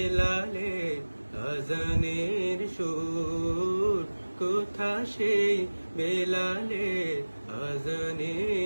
আযানের সুর, কোথা সেই বেলালের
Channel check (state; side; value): inverted; both; correlation -1.00